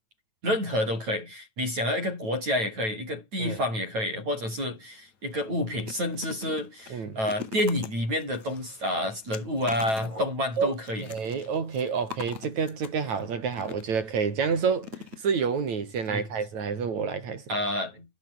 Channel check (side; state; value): left; late; 9.1 ms